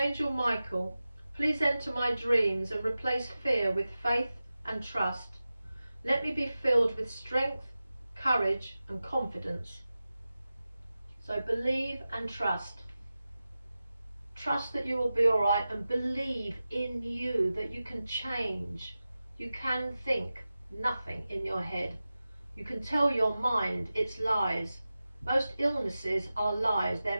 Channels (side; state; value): both; inverted; correlation -0.94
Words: Michael, please enter my dreams and replace fear with faith and trust. Let me be filled with strength, courage and confidence. So believe and trust. Trust that you will be all right, and believe in you, that you can change. You can think nothing in your head. You can tell your mind it's lies. Most illnesses are lies.